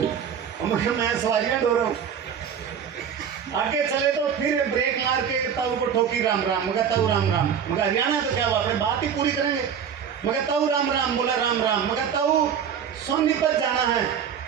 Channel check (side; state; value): left; quieter; 7.9 dB